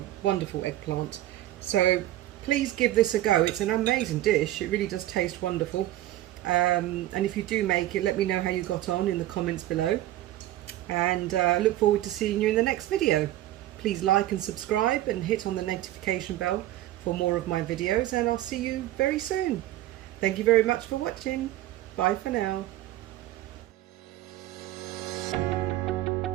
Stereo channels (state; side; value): quieter; left; 14.7 dB